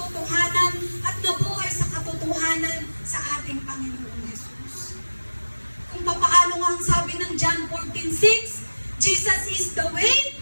at nabuhay sa katotohanan sa ating Panginoong Jesus. Kung papaano nga ang sabi ng John 14:6, Jesus is the way,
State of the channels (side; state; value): both; inverted; correlation -1.00